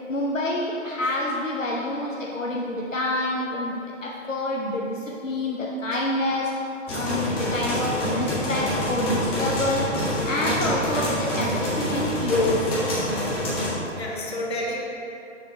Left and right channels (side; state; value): both; normal; correlation 0.07